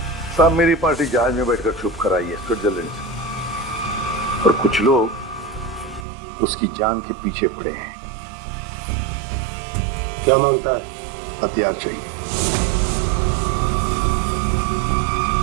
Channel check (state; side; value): drops out; left; at 6.1 s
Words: साहब मेरी पार्टी जहाज में बैठकर छुप कर आई है स्विट्जरलैंड से, और कुछ लोग उसकी जान के पीछे पड़े हैं। क्या मांगता है? हथियार चाहिए।